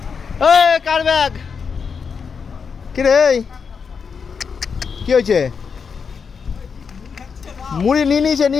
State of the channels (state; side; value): quieter; right; 5.9 dB